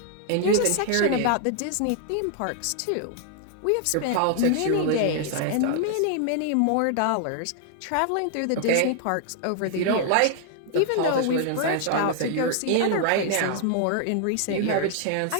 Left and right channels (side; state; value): both; different; correlation 0.00